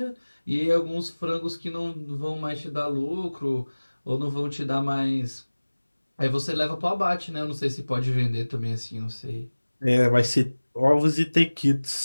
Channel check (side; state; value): both; inverted; correlation -1.00